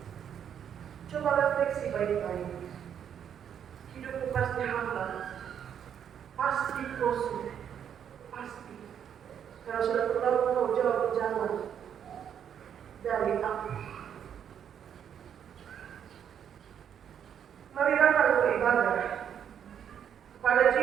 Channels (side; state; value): left; quieter; 8.7 dB